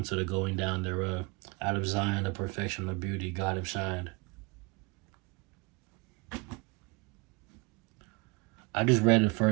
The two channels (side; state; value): left; quieter; 27.1 dB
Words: the going down thereof. Out of Zion, the perfection of beauty, God have shined. I just read the